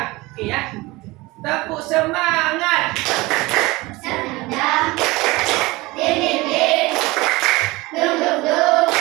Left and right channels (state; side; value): quieter; left; 21.7 dB